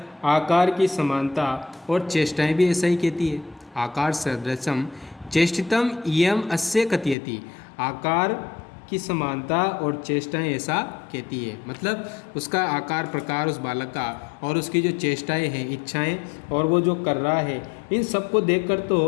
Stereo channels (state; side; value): drops out; right; at 7.2 s